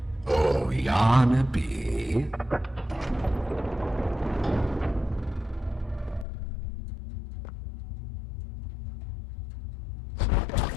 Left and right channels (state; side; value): drops out; right; at 6.2 s